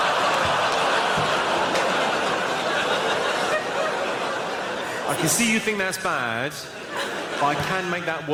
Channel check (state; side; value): identical; both; correlation 1.00